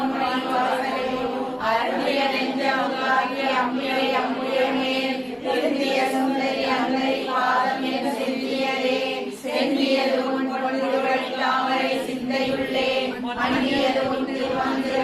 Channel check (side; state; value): both; identical; correlation 1.00